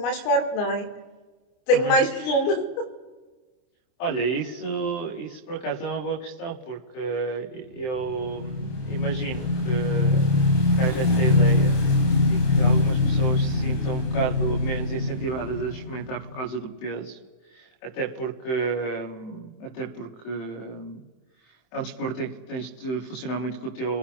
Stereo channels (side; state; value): right; late; 27 ms